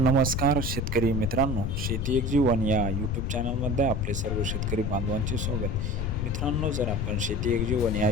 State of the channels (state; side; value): noise; left; rumble, 1 dB below the sound